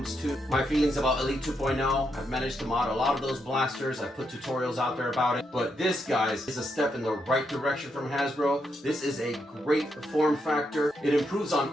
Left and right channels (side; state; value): both; normal; correlation 0.80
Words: to my feelings about Elite 2.0. I've managed to mod a lot of those blasters. I put tutorials out there about it, but this, guys, is a step in the right direction from Hasbro. This is a great form factor. It improves